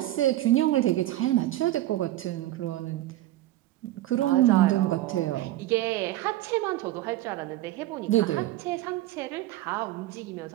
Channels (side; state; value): left; quieter; 15.3 dB